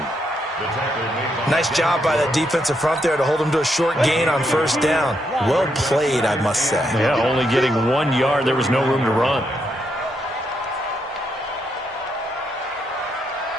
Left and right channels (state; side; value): normal; both; correlation 0.78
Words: Nice job by that defensive front there to hold him to a short gain on 1st down. Well played, I must say. Yeah, only getting 1 yard. There was no room to run.